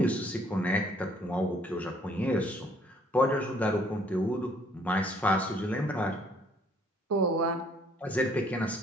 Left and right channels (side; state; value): both; normal; correlation 0.62